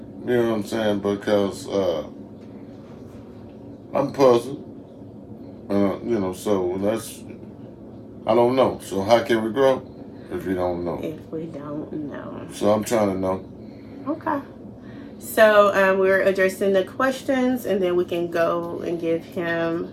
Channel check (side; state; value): both; identical; correlation 1.00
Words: You know what I'm saying? Because I'm puzzled. So I don't know. So how can we grow if we don't know? If we don't know. So I'm trying to know. Okay. So we're addressing the questions, and then we can go and give him